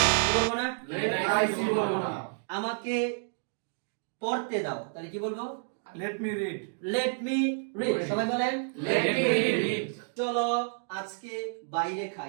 কি বলবো না? লেট আই সি বলবো না। আমাকে পড়তে দাও, তাহলে কি বলবো? Let me read. Let me read. সবাই বলেন লেট মি রিড। চলো আজকে বাইরে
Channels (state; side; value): silent; left; digital silence